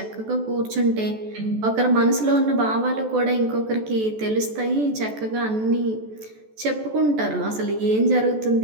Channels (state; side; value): late; left; 14 ms